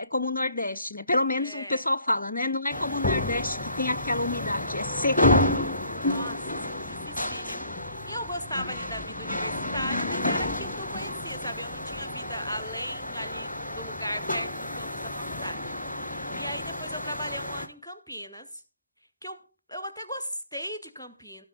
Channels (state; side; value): inverted; both; correlation -0.61